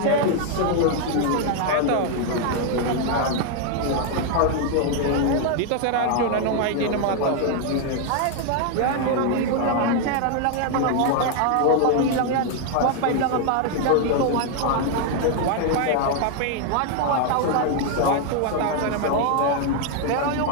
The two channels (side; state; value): both; different; correlation 0.00